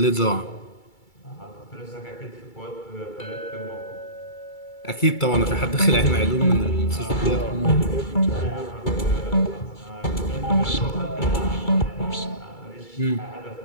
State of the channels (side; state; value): right; late; 2.3 ms